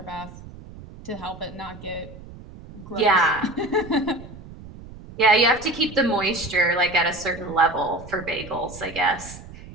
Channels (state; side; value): noise; right; rumble, 16 dB below the sound